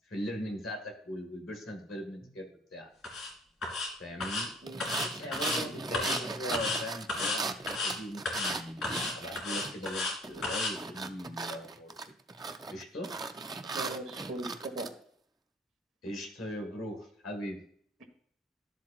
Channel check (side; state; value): both; normal; correlation 0.52